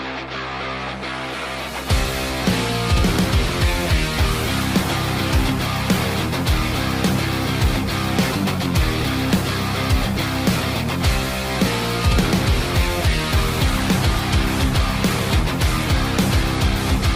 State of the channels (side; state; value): both; identical; correlation 1.00